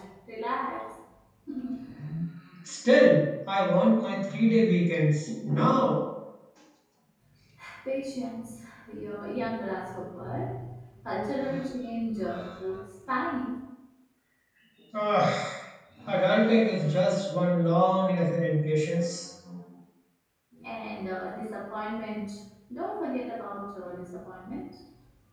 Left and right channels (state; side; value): identical; both; correlation 1.00